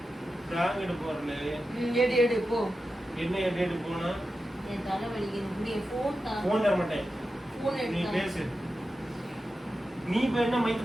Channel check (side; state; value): both; normal; correlation 0.91